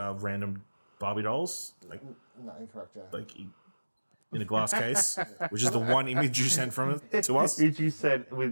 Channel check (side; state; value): both; inverted; correlation -1.00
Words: Barbie dolls. No, incorrect. Yeah. Like in a glass case, which is the one image you sent from it to us. Which you sent with